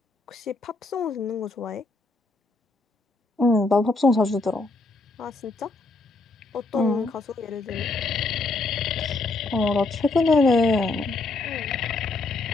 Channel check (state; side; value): quieter; right; 3.4 dB